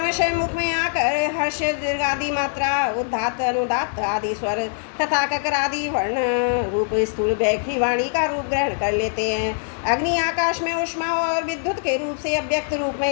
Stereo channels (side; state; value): right; silent; digital silence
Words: मुख में आकर हर्ष दीर्घ आदि मात्रा उदात्त अनुदात्त आदि स्वर तथा ककर आदि वर्ण रूप स्थूल बैखरी वाणी का रूप ग्रहण कर लेते हैं। अग्नि आकाश में उष्मा और विद्युत के रूप से अव्यक्त रूप